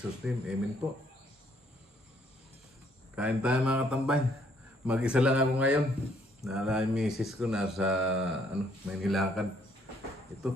name, Amen po. Kain tayo mga katambay. Mag-isa lang ako ngayon. Nala yung misis ko nasa may nilakad.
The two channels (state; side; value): normal; both; correlation 0.67